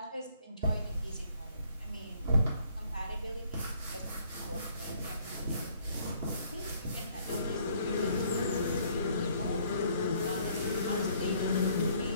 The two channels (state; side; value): inverted; both; correlation -0.63